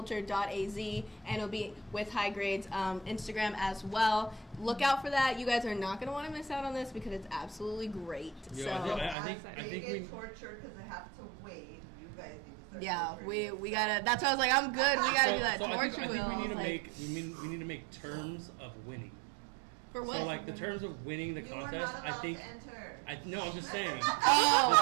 and it'll be with High Grade's Instagram as well. Look out for that. You guys are not going to want to miss out on this because it's absolutely great. Yeah, So I think they we. get tortured because they have to wait. You guys need to start yeah, torturing we yourself. gotta. That's why I was like, I'm good. We gotta do that I torture think wheel. we need to like, we need to make terms of winning. for what? So like the terms of winning the You are contest, not I allowed think. to enter. No, I'm just saying. Oh,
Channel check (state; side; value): drops out; left; at 9.2 s